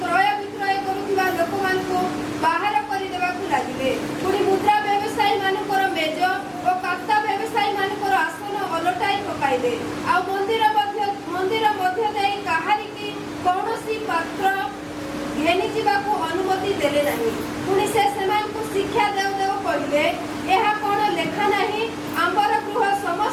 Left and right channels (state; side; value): identical; both; correlation 1.00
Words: ବିକ୍ରୟ କରୁଥିବା ଲୋକମାନଙ୍କୁ ବାହାର କରିଦେବାକୁ ଲାଗିଲେ। ପୁଣି ମୁଦ୍ରା ବ୍ୟବସାୟୀମାନଙ୍କର ମେଜ ଓ କାତା ବ୍ୟବସାୟୀମାନଙ୍କର ଆସନ ଓଲଟାଇ ପକାଇଲେ। ଆଉ ମନ୍ଦିର ମଧ୍ୟ ଦେଇ କାହାରିକି କୌଣସି ପାତ୍ର ଘେନି ଯିବାକୁ ଅନୁମତି ଦେଲେ ନାହିଁ। ପୁଣି ସେ ସେମାନଙ୍କୁ ଶିକ୍ଷା ଦେଉ ଦେଉ କହିଲେ, ଏହା କ'ଣ ଲେଖା ନାହିଁ, ଆମ୍ବର ଗୃହ